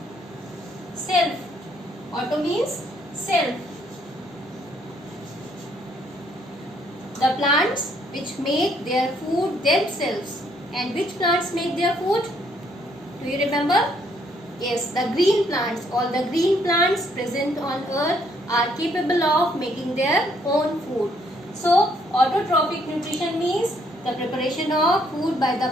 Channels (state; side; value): normal; both; correlation 0.68